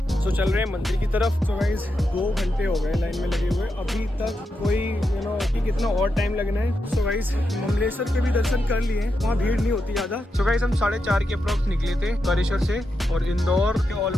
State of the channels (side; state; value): both; normal; correlation 0.86